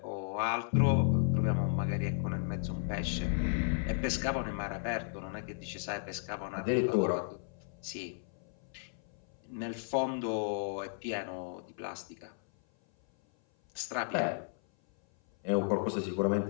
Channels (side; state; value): right; silent; 55 dB below the other